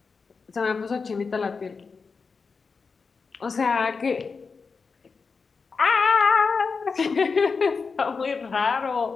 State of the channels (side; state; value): right; quieter; 4.9 dB